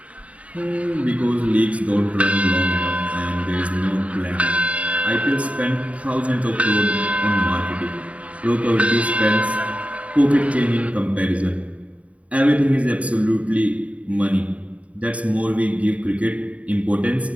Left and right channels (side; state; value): left; late; 0.066 ms